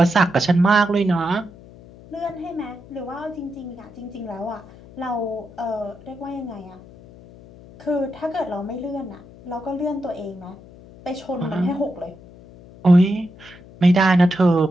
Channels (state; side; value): noise; left; hum, 21 dB below the sound